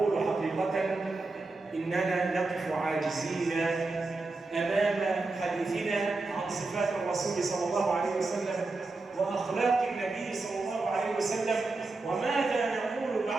حقيقة إننا نقف عاجزين أمام حديثنا عن صفات الرسول صلى الله عليه وسلم وأخلاق النبي صلى الله عليه وسلم. وماذا نقول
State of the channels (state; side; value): quieter; left; 3.5 dB